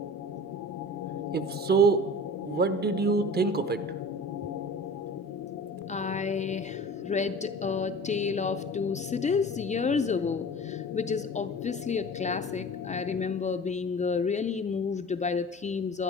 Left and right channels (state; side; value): normal; both; correlation 0.39